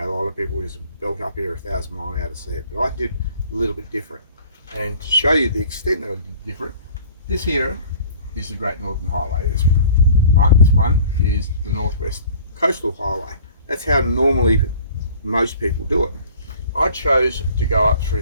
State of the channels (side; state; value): both; inverted; correlation -0.48